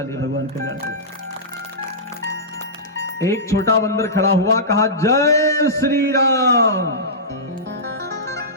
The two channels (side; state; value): both; normal; correlation -0.17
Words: ले, भगवान कल्याण को। एक छोटा बंदर खड़ा हुआ, कहा जय श्री राम।